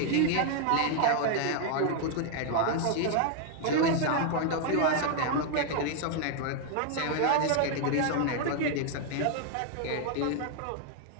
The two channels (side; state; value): both; different; correlation 0.00